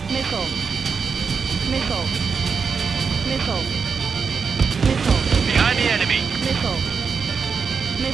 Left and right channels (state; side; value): quieter; left; 5.6 dB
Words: Missile. Missile. Missile. Missile. Behind the enemy. Missile.